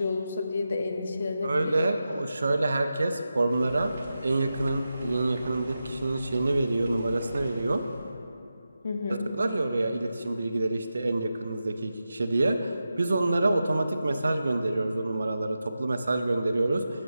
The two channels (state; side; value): inverted; both; correlation -0.91